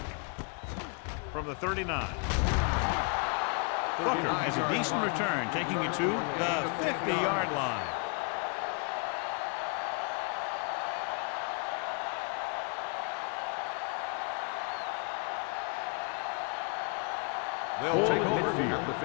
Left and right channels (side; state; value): right; quieter; 35.2 dB